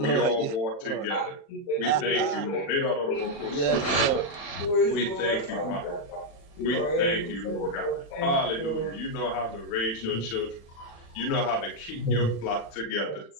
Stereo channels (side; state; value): right; late; 36 ms